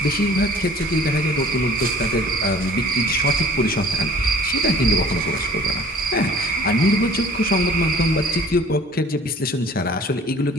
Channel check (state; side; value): normal; both; correlation 0.50